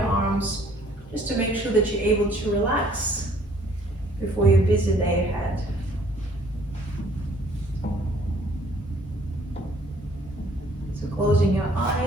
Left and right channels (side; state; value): both; normal; correlation 0.60